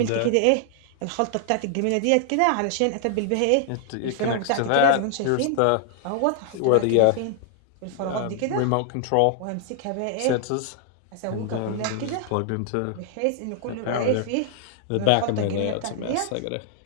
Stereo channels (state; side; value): different; both; correlation 0.00